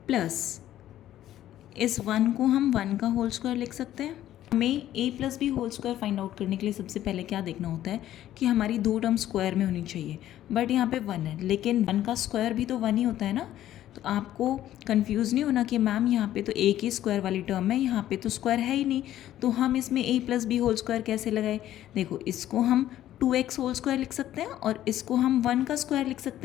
plus इस 1 को हम 1 का होल स्क्वायर लिख सकते हैं. हमें a plus B whole square find out करने के लिए सबसे पहले क्या देखना होता है कि हमारी दो टर्म स्क्वायर में होनी चाहिए. बट यहाँ पे 1 है, लेकिन 1 का स्क्वायर भी तो 1 ही होता है ना. तो आपको कंफ्यूज नहीं होना कि मैम यहाँ पे तो a की स्क्वायर वाली टर्म है, यहाँ पे तो स्क्वायर है ही नहीं, तो हम इसमें a plus B whole square कैसे लगाए. देखो, इसको हम 2x होल स्क्वायर लिख सकते हैं और इसको हम 1 का स्क्वायर लिख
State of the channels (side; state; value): right; quieter; 12.7 dB